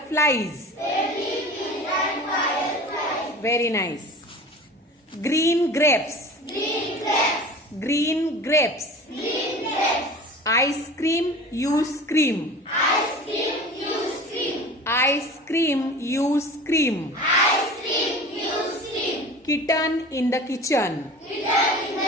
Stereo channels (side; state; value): both; normal; correlation 0.38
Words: flies. Very nice. Green grapes. Green grapes. Ice cream you scream. Ice cream you scream. Kitten in the kitchen.